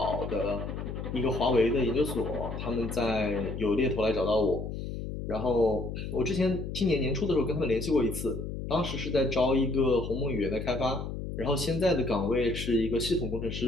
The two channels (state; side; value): noise; left; hum, 6 dB below the sound